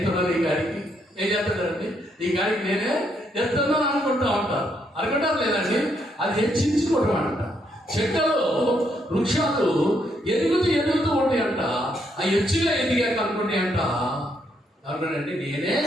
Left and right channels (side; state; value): both; normal; correlation 0.75